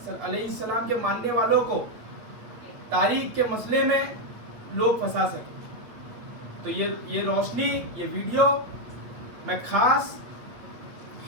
अलैहिस्सलाम के मानने वालों को तारीख के मसले में लोग फंसा सके। तो ये रोशनी, ये वीडियो मैं खास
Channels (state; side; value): late; left; 8.6 ms